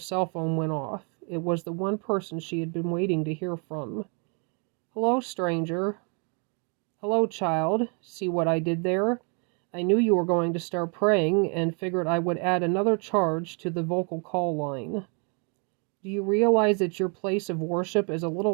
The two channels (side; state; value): left; quieter; 36.5 dB